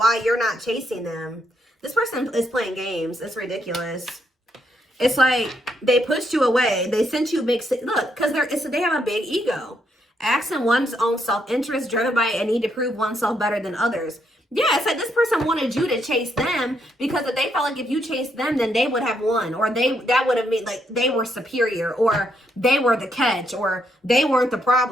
you're not chasing them. This person is playing games. It's ridiculous. It's like they pushed you away. They sent you mixed signals. Look, because they have a big ego. Acting one's own self-interest, driven by a need to prove oneself better than others. Yeah, it's like this person wanted you to chase them because if they felt like if you chased them, then they would have won. Or that would have meant like they were superior or they were the catch or they weren't the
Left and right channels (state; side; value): normal; both; correlation 0.76